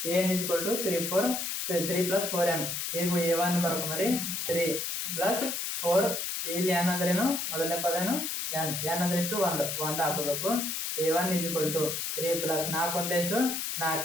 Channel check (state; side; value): noise; left; hiss, 2 dB below the sound